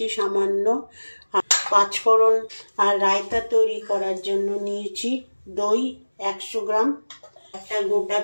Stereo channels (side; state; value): both; inverted; correlation -1.00